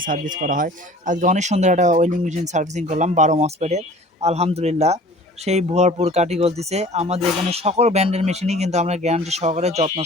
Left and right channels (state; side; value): normal; both; correlation 0.46